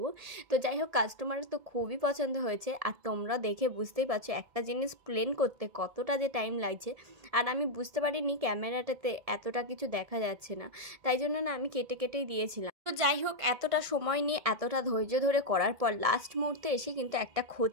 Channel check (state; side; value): late; left; 1.7 ms